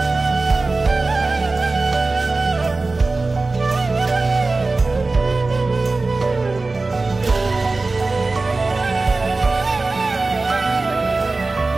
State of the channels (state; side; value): quieter; left; 3.5 dB